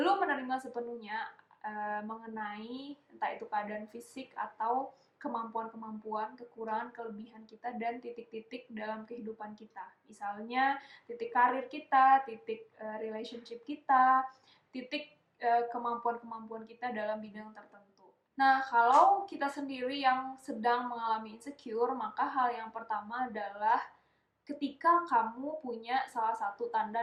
menerima sepenuhnya mengenai entah itu keadaan fisik atau kemampuan-kemampuan, kekurangan, kelebihan kita, dan titik-titik dalam kehidupan kita. Misalnya titik karir kita, titik relationship kita, titik kemampuan-kemampuan kita dalam bidang tertentu. Nah, kalau kita sendiri yang sedang mengalami insecure, maka hal yang pertama adalah ketika kamu punya salah satu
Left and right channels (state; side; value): identical; both; correlation 1.00